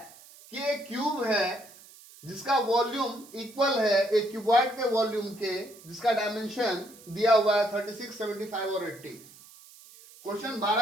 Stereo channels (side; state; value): right; noise; hiss, 22 dB below the sound